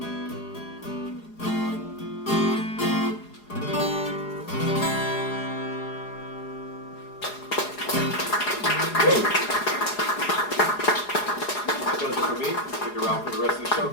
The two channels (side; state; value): right; late; 4.8 ms